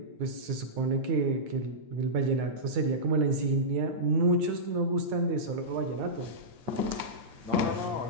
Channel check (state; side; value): late; left; 9.7 ms